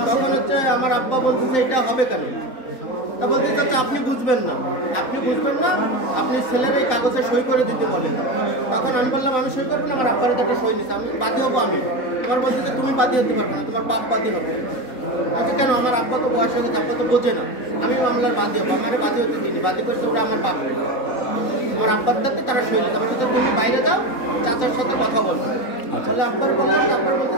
তখন হচ্ছে আমার আব্বা বলতেছে এটা হবে কেন? তা বলতে চাচ্ছে আপনি বুঝবেন না, আপনি বুঝবেন না, আপনি ছেলের এই কাগজে সই করে দিতে বলেন। তখন আমি বললাম আমি সই করবো না, আমার আব্বার একটা সই দিচ্ছে, আমি বাদী হবো। আমি তোমার বলছি যে তুমি বাদী হতে পারবে না, তোমার বাপ বাদী হবে। আচ্ছা কেন? আমার আব্বা তো বয়স হয়ে গেছে, আব্বা তো বোঝে না, আমি মামলার বাদী হবো। আমার বাদী হতে দিচ্ছি, বাদী করছে ওরা আমার বাপ, আমার আব্বার দাঁতে তারা সই দিতে পারবে। তুমি বাইরে যাও, চাচার সাথে কথা বলবো। তাহলে আব্বার বললাম, আব্বার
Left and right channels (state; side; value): late; right; 3.9 ms